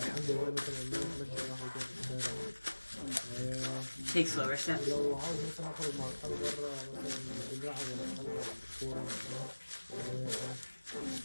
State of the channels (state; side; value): inverted; both; correlation -1.00